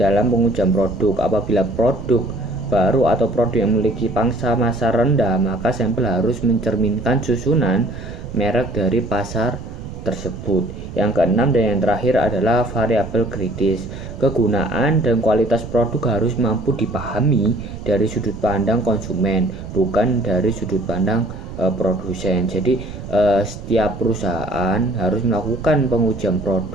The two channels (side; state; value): right; noise; rumble, 11 dB below the sound